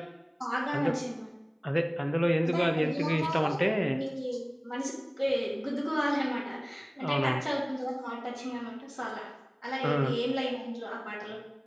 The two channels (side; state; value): both; identical; correlation 1.00